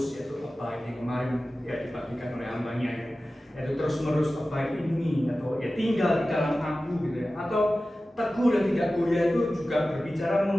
yaitu abide yang kemarin ya dibagikan oleh hambanya ya, yaitu terus menerus abide ini, atau ya tinggal di dalam aku gitu ya. Atau teguh dan tidak goyah itu juga berbicara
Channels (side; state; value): both; normal; correlation 0.95